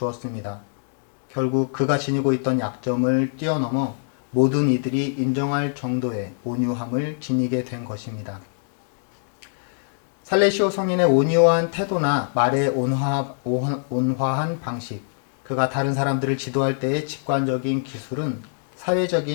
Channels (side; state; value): right; silent; digital silence